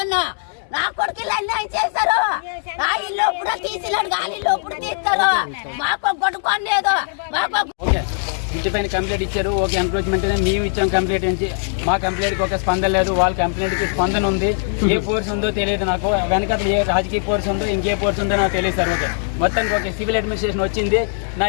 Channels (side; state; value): right; silent; 59 dB below the other